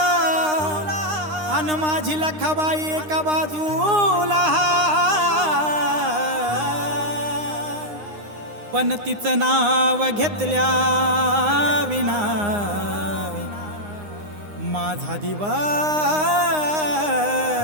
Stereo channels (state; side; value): late; left; 9.7 ms